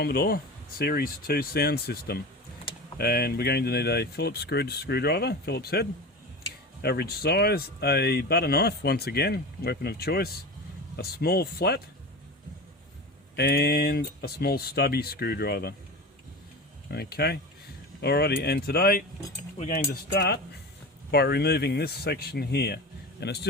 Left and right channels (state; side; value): normal; both; correlation 0.29